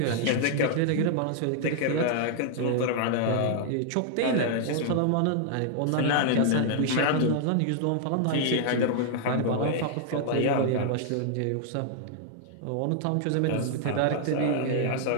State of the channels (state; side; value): different; both; correlation 0.00